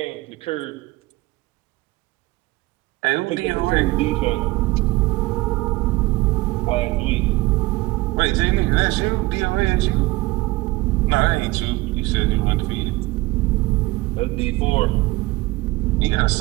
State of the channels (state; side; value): quieter; left; 20.6 dB